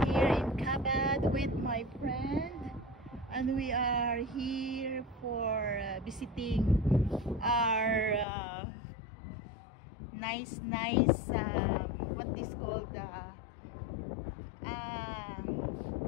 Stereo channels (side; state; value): right; drops out; at 8.2 s